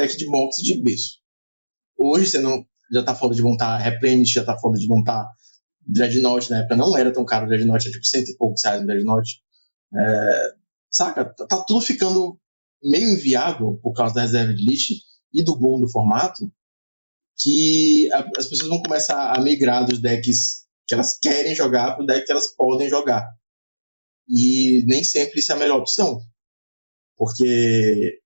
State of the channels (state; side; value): inverted; both; correlation -1.00